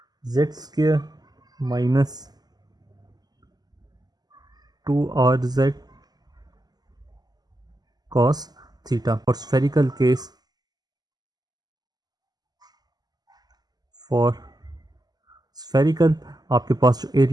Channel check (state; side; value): late; left; 0.20 ms